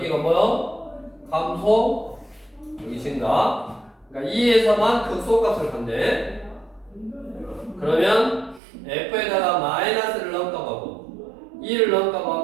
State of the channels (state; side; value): drops out; left; at 8.6 s